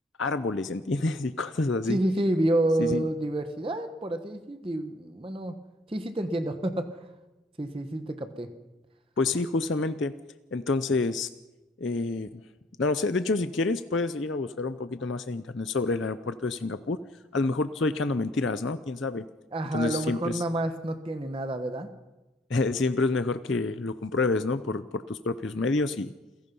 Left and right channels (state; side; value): normal; both; correlation 0.59